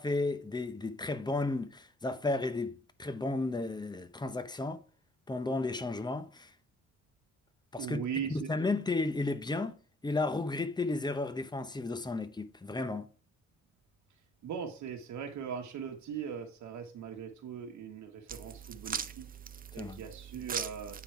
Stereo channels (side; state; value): both; normal; correlation 0.59